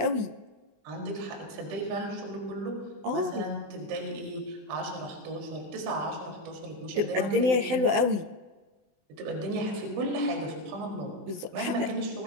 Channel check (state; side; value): late; left; 20 ms